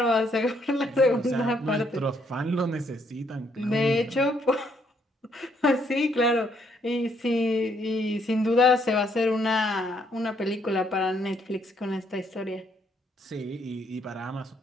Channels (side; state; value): both; normal; correlation 0.71